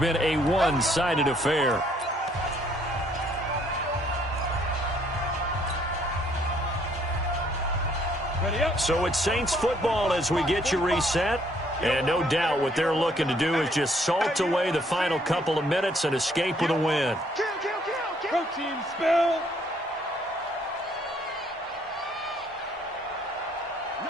a one-sided affair. So it's Saints football as we get you reset. And no doubt what they're looking to do is just salt away the final couple of minutes and escape with a win. Protein spill.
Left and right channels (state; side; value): normal; both; correlation 0.66